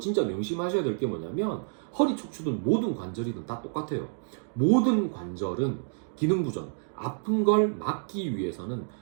명심하셔야 될 게 뭐냐면 허리 척추든 모든 관절이든 다 똑같아요. 모든 관절은 기능 부전, 아픈 걸 막기 위해서는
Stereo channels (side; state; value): left; silent; digital silence